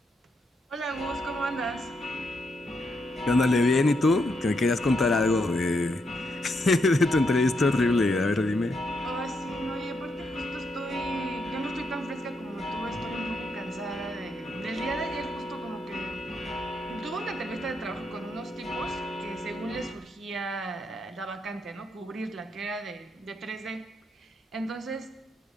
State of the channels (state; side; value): normal; both; correlation 0.79